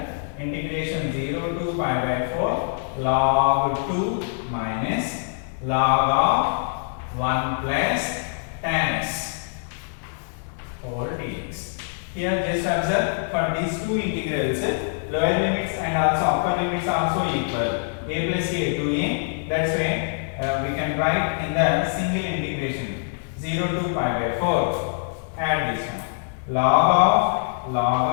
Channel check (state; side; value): silent; right; 62 dB below the other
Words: integration 0 to pi by 4 log 2 minus log of 1 plus tan x over dx. Here just observe for these two integrals lower limits and also upper limits also equal. A plus a to a. That's why we can write in the single integration 0 to pi by 4. Add this one. Log